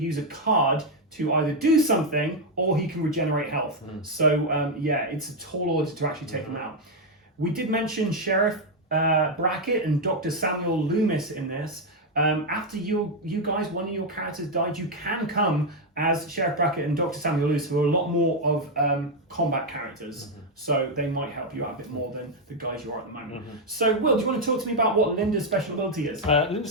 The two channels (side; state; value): both; normal; correlation 0.03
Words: a card to either do something or he can regenerate health. So, yeah, it's a tall order to actually take him out. We did mention Sheriff Brackett and Dr. Samuel Loomis in this. After you guys, one of your characters died, you can come as Sheriff Brackett and Dr. Samuel Loomis, who are a lot more of combat characters. So they might help you out a bit more than the guys you are at the moment. So, Will, do you want to talk to me about what Linda's special ability is?